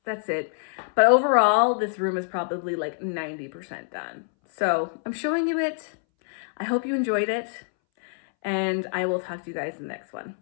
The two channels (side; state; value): right; silent; 61 dB below the other